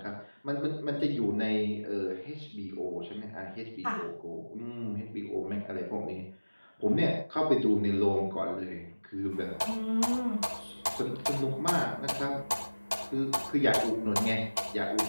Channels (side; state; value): both; inverted; correlation -1.00